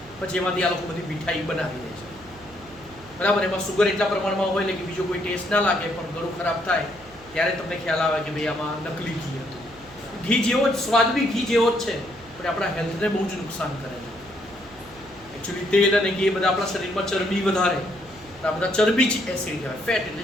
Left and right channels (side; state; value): right; noise; hum, 23 dB below the sound